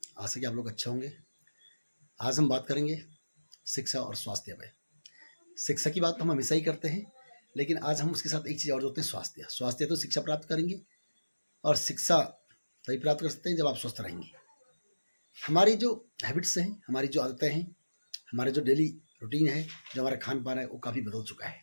आशा कि आप लोग अच्छे होंगे। आज हम बात करेंगे शिक्षा और स्वास्थ्य पे। शिक्षा की बात तो हम हमेशा ही करते हैं, लेकिन आज हम उसके साथ एक चीज़ और जोड़ते हैं, स्वास्थ्य। स्वास्थ्य तो शिक्षा प्राप्त करेंगे और शिक्षा तभी प्राप्त कर सकते हैं जब आप स्वस्थ रहेंगे। हमारी जो हैबिट्स हैं, हमारी जो आदतें हैं, हमारे जो डेली रूटीन है, जो हमारा खान पान है, वो काफ़ी बदल चुका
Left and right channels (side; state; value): both; inverted; correlation -1.00